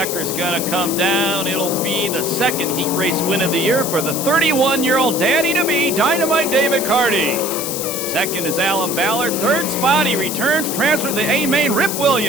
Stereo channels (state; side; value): noise; left; hiss, 4 dB below the sound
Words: gonna come down. It'll be the second heat race win of the year for the 31-year-old daddy-to-be Dynamite David Carty. Second is Alan Ballard. Third spot, he returns, transfer to the A main, Rip